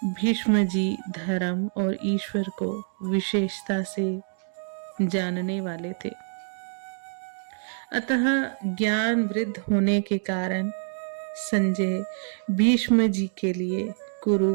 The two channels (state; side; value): silent; left; digital silence